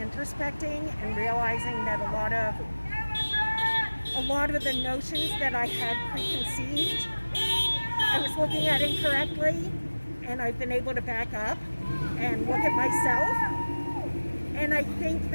and realizing that a lot of the notions that I had preconceived, I was looking at incorrectly, and I've been able to back up and look at myself. And I think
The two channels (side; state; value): both; inverted; correlation -1.00